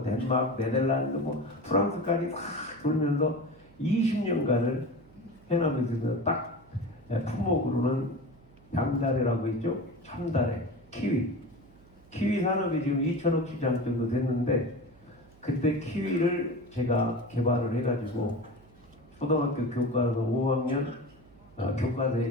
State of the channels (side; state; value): right; noise; hum, 27 dB below the sound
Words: 네덜란드, 뭐 프랑스까지 다 돌면서 20년간을 해남에서 딱 품목으로는 양다래라고 있죠. 참다래, 키위 산업이 지금 2천억 시장 정도 됐는데 그때 키위를 제가 개발을 해가지고 초등학교 교과서 5학년